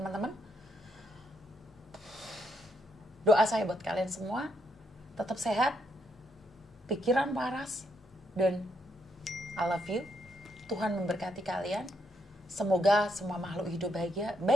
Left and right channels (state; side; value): normal; both; correlation 0.76